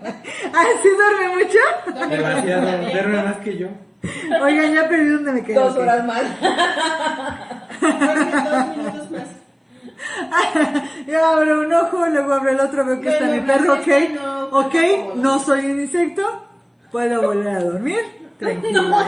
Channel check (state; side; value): identical; both; correlation 1.00